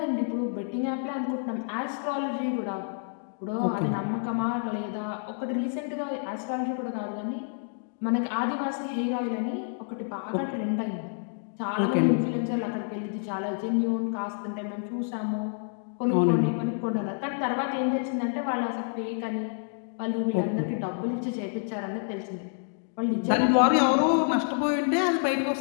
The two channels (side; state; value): right; silent; digital silence